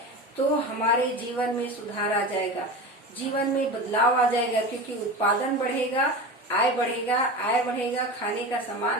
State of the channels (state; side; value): normal; both; correlation 0.28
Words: तो हमारे जीवन में सुधार आ जाएगा, जीवन में बदलाव आ जाएगा। क्योंकि उत्पादन बढ़ेगा, आय बढ़ेगा, खाने का